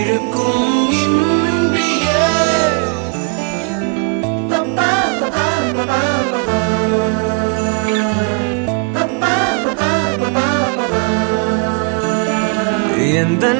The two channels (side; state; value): left; quieter; 36.7 dB